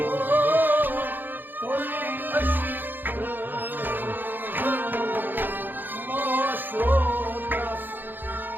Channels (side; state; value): left; late; 0.090 ms